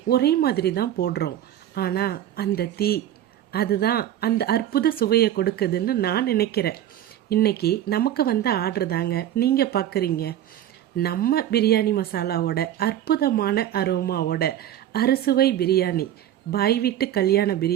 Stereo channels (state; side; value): quieter; left; 11.6 dB